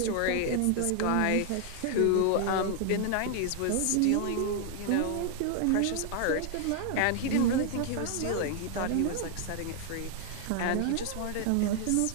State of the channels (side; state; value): both; different; correlation 0.00